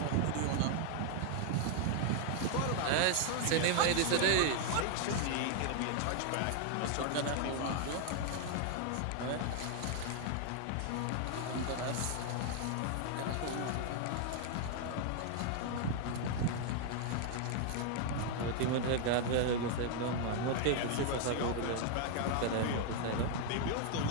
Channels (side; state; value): both; different; correlation 0.00